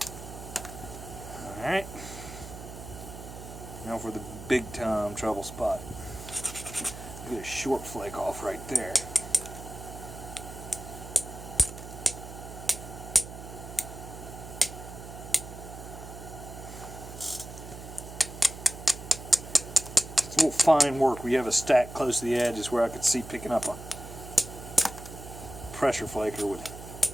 Alright. Now for the big time trouble spot. Get a short flake off right there. It's a little fine work where you have a stack close to the edge is where I could see picking up a pressure flaker would.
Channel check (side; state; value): right; noise; hum, 12 dB below the sound